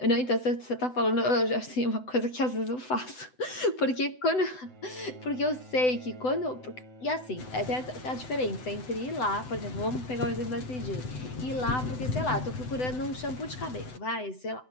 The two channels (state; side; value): late; right; 7.9 ms